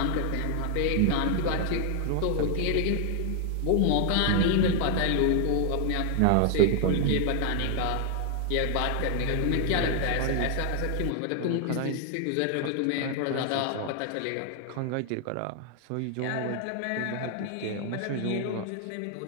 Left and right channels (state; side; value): different; both; correlation 0.00